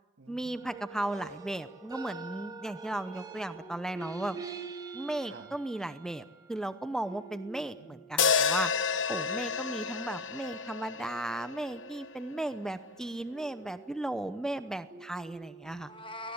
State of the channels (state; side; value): normal; both; correlation 0.36